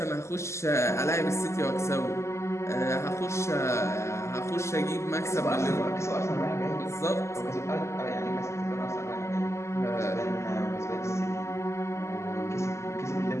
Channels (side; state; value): right; late; 0.13 ms